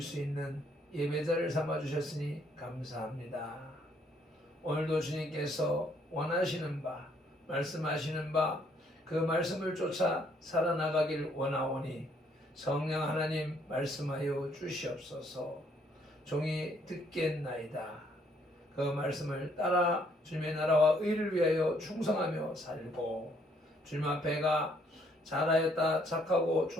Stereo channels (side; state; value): both; normal; correlation 0.68